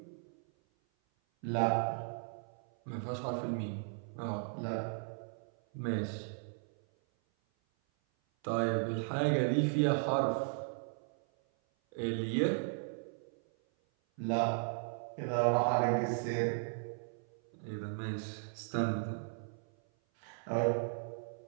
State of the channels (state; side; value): silent; left; 54 dB below the other